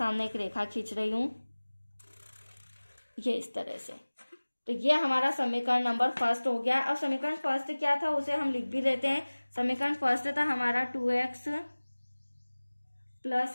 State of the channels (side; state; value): both; inverted; correlation -1.00